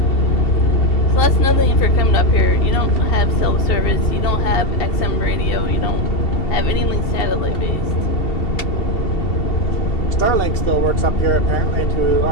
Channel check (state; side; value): late; right; 2.7 ms